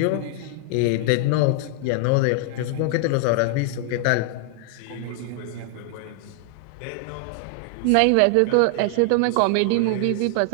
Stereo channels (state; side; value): different; both; correlation 0.00